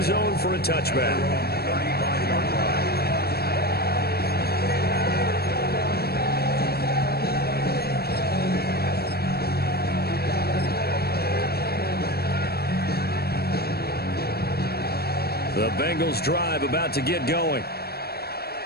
zone for a touchback. The Bengals drive about to get going.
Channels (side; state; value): right; late; 0.46 ms